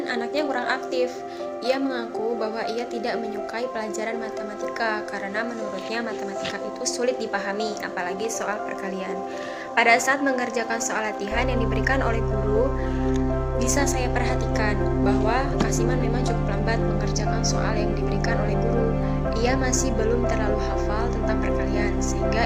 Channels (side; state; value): both; identical; correlation 1.00